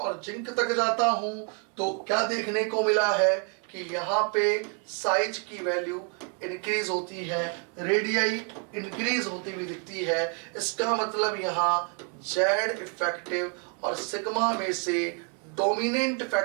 जिंक तक जाता हूं तो क्या देखने को मिला है कि यहाँ पे साइज की वैल्यू इंक्रीज होती है, रेडियाई इंक्रीज होती हुई दिखती है। इसका मतलब यहाँ जेड इफेक्टिव और सिग्मा में से डोमिनेंट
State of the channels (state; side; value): quieter; left; 39.8 dB